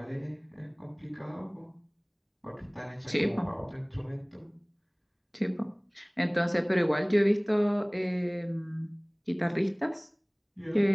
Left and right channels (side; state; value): both; identical; correlation 1.00